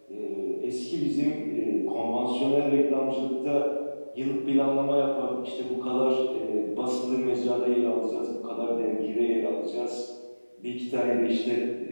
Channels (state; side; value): inverted; both; correlation -1.00